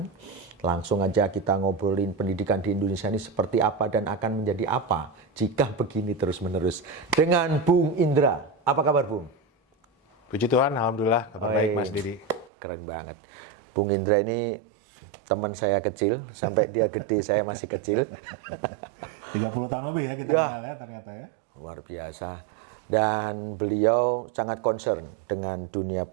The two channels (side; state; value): left; drops out; at 12.5 s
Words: Langsung aja kita ngobrolin pendidikan di Indonesia ini seperti apa dan akan menjadi apa jika begini terus-menerus. Dengan Bung Indra. Apa kabar, Bung? Puji Tuhan, Alhamdulillah, kabar baik Mas Didi. Keren banget. Bung Indra ini teman saya kecil, sampai dia gede saya masih kecil. 30 tahun lebih ya kita kenal ya ternyata ya. Luar biasa. Dan beliau sangat concern dengan dunia